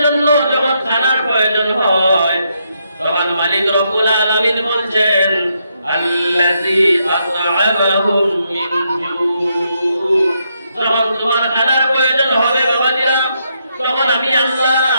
জন্য যখন খানার প্রয়োজন হয়, তখন মালিক রব্বুল আলামিন বলছেন আল্লাযী আত'আমাহুম মিন জু। যখন তোমার খানার প্রয়োজন হবে বাবাজিরা, তখন আমি আল্লাহ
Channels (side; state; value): both; inverted; correlation -0.78